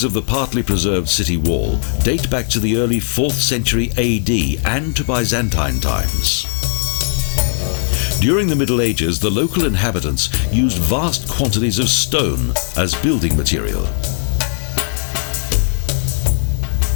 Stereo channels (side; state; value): right; silent; digital silence